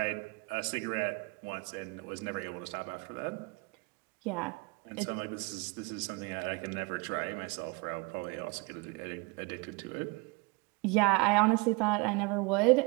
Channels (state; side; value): quieter; left; 28.2 dB